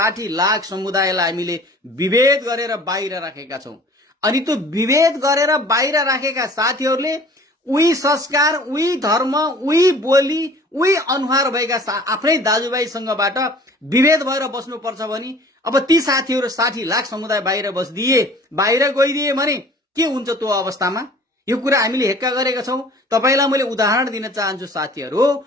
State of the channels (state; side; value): normal; both; correlation 0.48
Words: लाख समुदायलाई हामीले विभेद गरेर बाहिर राखेका छौं। अनि त्यो विभेद गरेर बाहिर राखेका साथीहरूले उही संस्कार, उही धर्म, उही बोली, उही अनुहार भएका आफ्नै दाजुभाइसँगबाट विभेद भएर बस्नुपर्छ भने अब ती साथीहरू 60 लाख समुदाय बाहिर बाहिर गइदिए भने के हुन्छ त्यो अवस्थामा? यो कुरा हामीले हेक्का गरेका छौं। तपाईलाई मैले उदाहरण दिन चाहन्छु साथीहरू।